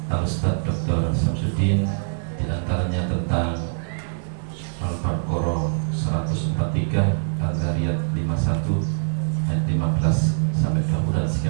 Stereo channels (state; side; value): silent; left; digital silence